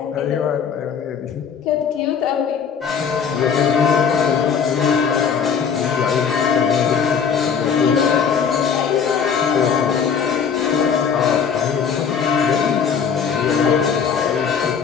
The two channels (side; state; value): right; quieter; 6.8 dB